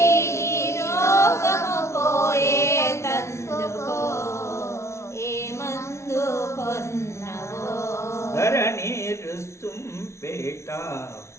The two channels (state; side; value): late; right; 0.13 ms